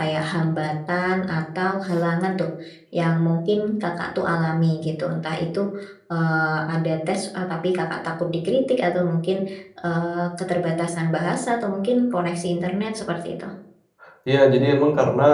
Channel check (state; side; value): identical; both; correlation 1.00